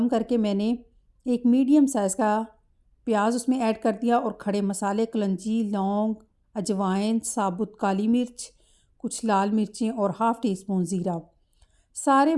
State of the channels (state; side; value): identical; both; correlation 1.00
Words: करके मैंने एक मीडियम साइज़ का प्याज उसमें ऐड कर दिया और खड़े मसाले कलंजी, लौंग, अजवाइन, साबुत काली मिर्च, कुछ लाल मिर्चें और हाफ़ टी स्पून ज़ीरा। सारे